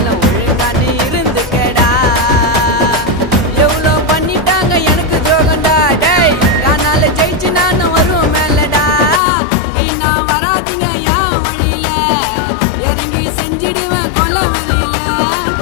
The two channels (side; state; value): right; drops out; at 9.2 s